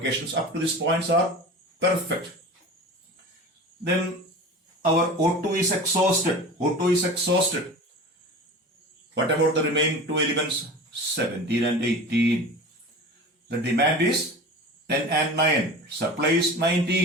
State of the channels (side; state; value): both; normal; correlation 0.35